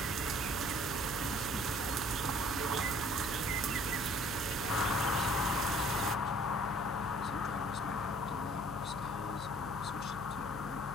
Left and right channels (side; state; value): left; noise; hum, 10 dB below the sound